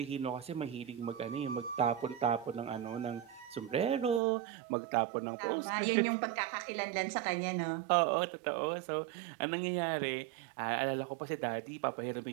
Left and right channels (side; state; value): left; drops out; at 4.2 s